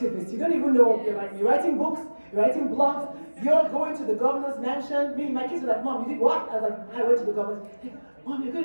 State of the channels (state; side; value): inverted; both; correlation -1.00